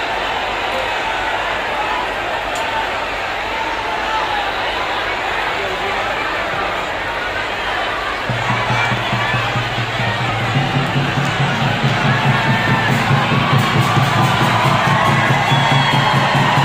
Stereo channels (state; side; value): identical; both; correlation 1.00